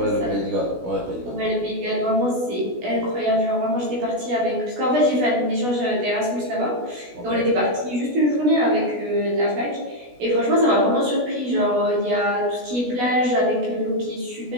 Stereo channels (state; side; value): late; left; 16 ms